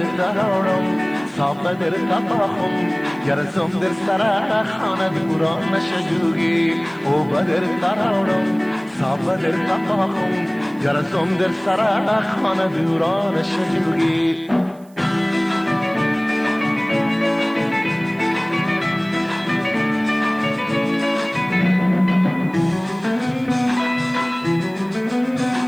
تراورم صاب در تپاخم گرزم در سر خانه دوران نشجوگی او بدر تراورم صاب در تپاخم گرزم در سر خانه دوران نشجوگی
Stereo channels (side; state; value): right; noise; hiss, 30 dB below the sound